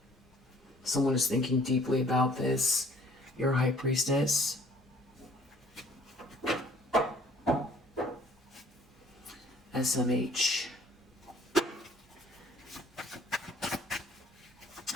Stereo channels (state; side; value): normal; both; correlation 0.56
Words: Someone is thinking deeply about this. Your High Priestess. SMH.